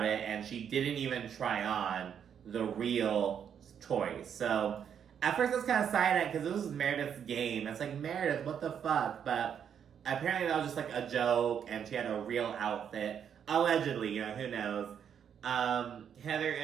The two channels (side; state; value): left; quieter; 8.2 dB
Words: it, and she didn't even try on the real choice. So at first I was kind of silent because this was Meredith's game. It's like, Meredith, what the fuck? But apparently that was just, like, a joke, and she had a real outfit. Allegedly, you know, who knows? Heather